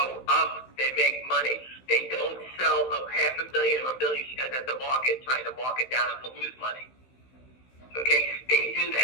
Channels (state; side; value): late; right; 16 ms